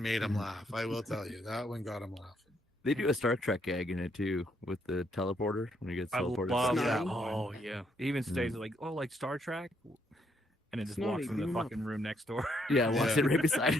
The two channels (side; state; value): both; normal; correlation 0.73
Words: him laugh. I will tell you, that one got him laughing. They do a Star Trek gag in it too with the teleporter when he gets I teleported. love to- that Oh, one. yeah. He even stays like, oh, like Star Trek, and then just walks Snotty, in the beam up. fucking room next door. Yeah, walks it right beside